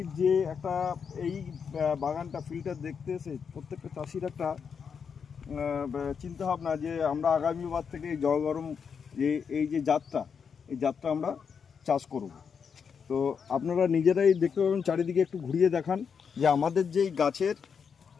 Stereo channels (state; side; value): quieter; right; 6.5 dB